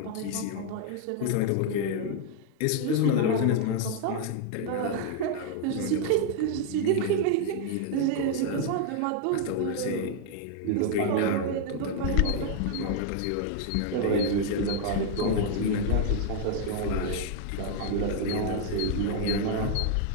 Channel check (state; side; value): different; both; correlation 0.00